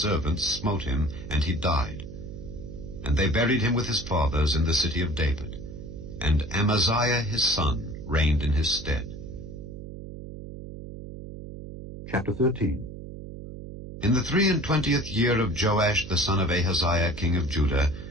smote him, and he died. And they buried him with his fathers in the city of David. And Amaziah his son reigned in his stead. Chapter 13. In the 23 year of Joash the son of Ahaziah king of Judah,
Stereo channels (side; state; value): right; noise; hum, 11 dB below the sound